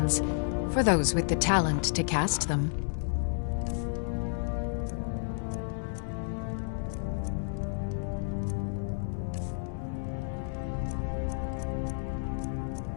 for those with the talent to cast them.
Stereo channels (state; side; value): silent; right; 57 dB below the other